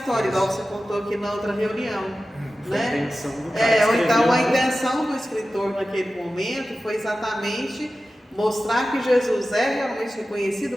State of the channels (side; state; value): both; normal; correlation 0.94